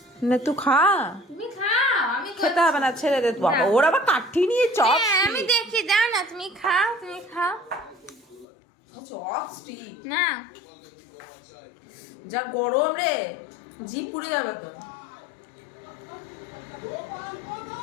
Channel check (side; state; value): right; drops out; at 8.5 s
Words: না তুই খা। তুমি খাও, আমি খেতে হবে না, ছেড়ে দে। বাবা ওর আবার কাঠি নিয়ে চপ। আমি দেখি, যাও না, তুমি খাও, তুমি খাও চপ স্টিক না। যা গরম রে, জিভ পুড়ে যাবে তো।